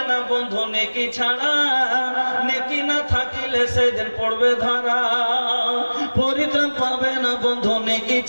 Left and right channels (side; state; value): both; inverted; correlation -1.00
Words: না বন্ধু নেকি ছাড়া, নেকি না থাকিলে সেদিন পড়বে ধরা। পরিত্রাণ পাবে না বন্ধু নেকি